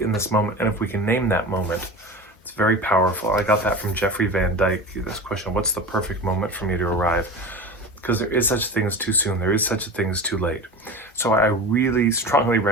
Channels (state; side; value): normal; both; correlation 0.31